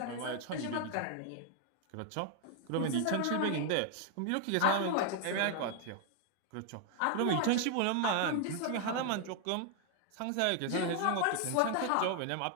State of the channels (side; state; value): both; different; correlation 0.00